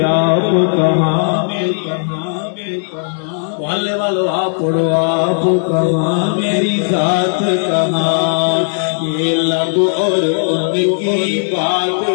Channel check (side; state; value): right; silent; digital silence